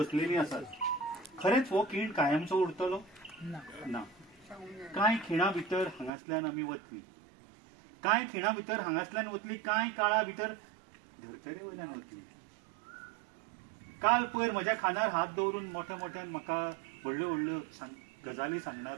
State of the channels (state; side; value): drops out; left; at 6.1 s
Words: आसात. खरेंच हो खीण कायमचो उरतलो? ना. कांय खिणा भितर हांगासल्यान आमी वतली. कांय खिणा भितर हांगासल्यान वतली, कांय काळा भितर धर्तरे वयल्यान वतली. काल पयर म्हज्या खांदार हात दवरून मोठ्या मोठ्यान म्हाका व्हडल्यो व्हडल्यो गजाली